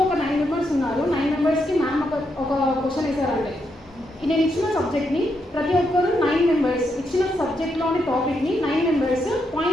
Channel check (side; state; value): both; normal; correlation 0.80